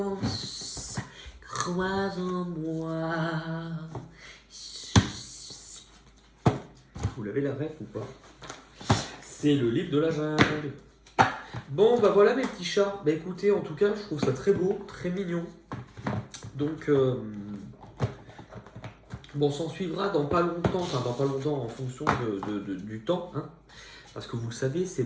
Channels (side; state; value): both; identical; correlation 1.00